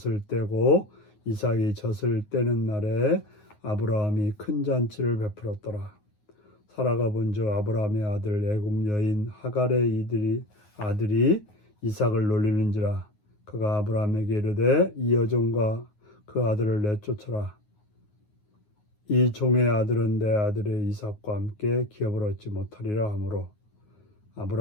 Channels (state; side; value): late; right; 9.5 ms